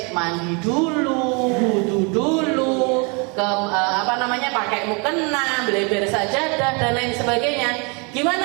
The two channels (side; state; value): left; quieter; 32.4 dB